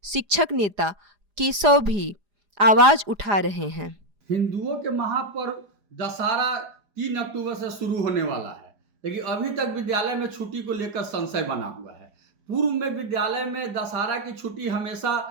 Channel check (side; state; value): left; late; 4.9 ms